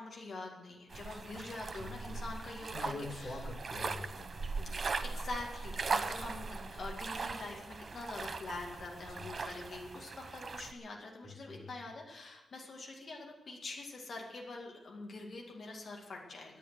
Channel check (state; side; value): normal; both; correlation 0.87